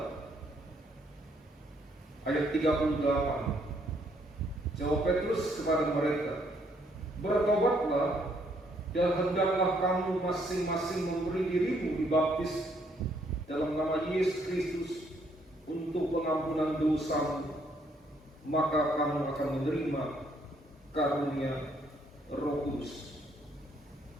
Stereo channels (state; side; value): normal; both; correlation 0.69